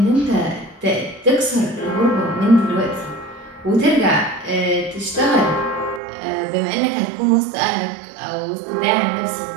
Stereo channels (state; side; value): drops out; left; at 6.0 s